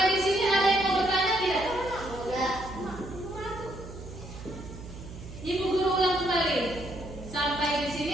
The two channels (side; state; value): right; noise; hum, 13 dB below the sound